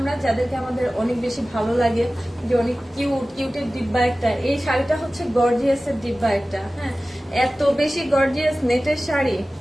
যাদেরকে আমাদের অনেক বেশি ভালো লাগে যে অনেক কিউটের ডিব্বা একটা, এই শাড়িটা হচ্ছে গর্জিয়াসের ডিব্বা একটা। হ্যাঁ এত বেশি গর্জিয়াস নেটের শাড়ি,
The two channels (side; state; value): both; normal; correlation 0.96